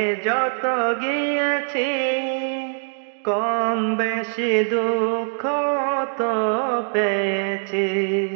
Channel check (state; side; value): silent; left; digital silence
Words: যত গিয়েছি, কম বেশি দুঃখ তো পেয়েছি।